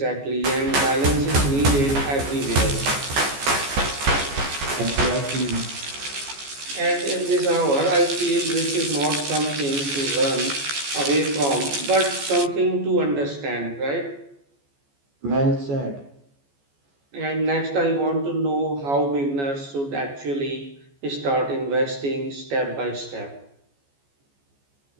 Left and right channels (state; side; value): late; left; 14 ms